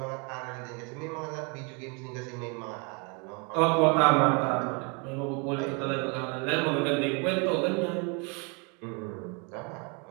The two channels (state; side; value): quieter; left; 32.8 dB